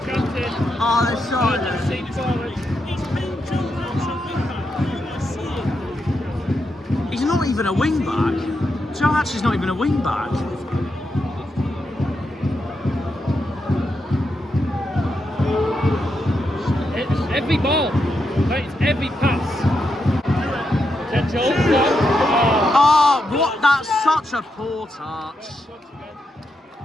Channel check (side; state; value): both; normal; correlation 0.83